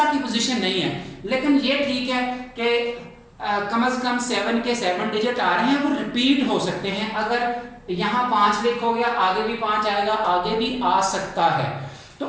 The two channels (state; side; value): identical; both; correlation 1.00